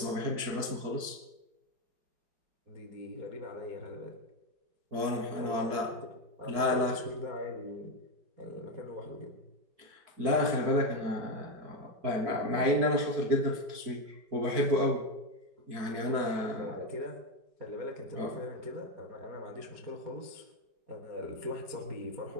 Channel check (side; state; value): left; late; 4.6 ms